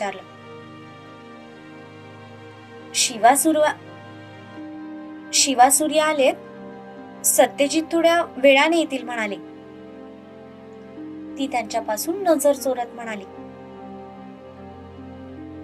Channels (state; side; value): identical; both; correlation 1.00